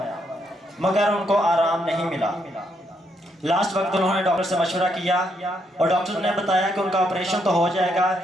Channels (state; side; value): normal; both; correlation 0.76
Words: मगर उनको आराम नहीं मिला। लास्ट वक्त उन्होंने डॉक्टर से मशवरा किया और डॉक्टर ने बताया कि उनका ऑपरेशन तो हो जाएगा